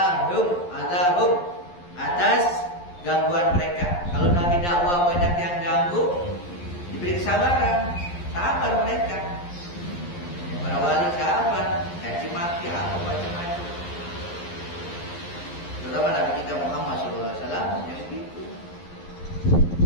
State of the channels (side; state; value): right; late; 11 ms